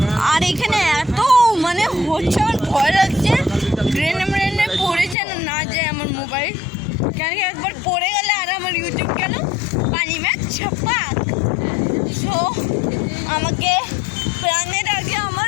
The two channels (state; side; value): drops out; right; at 5.2 s